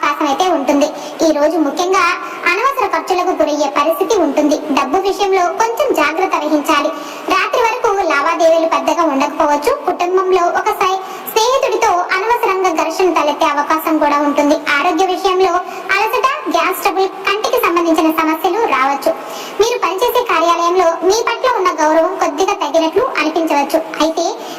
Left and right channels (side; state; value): both; identical; correlation 1.00